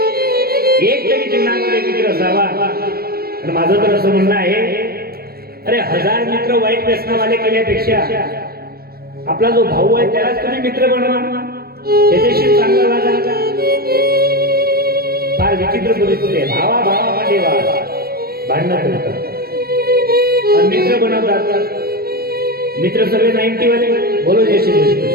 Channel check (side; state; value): left; late; 0.44 ms